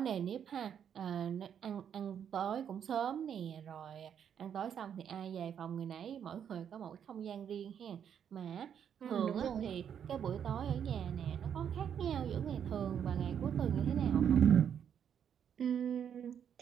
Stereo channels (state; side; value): quieter; left; 8.5 dB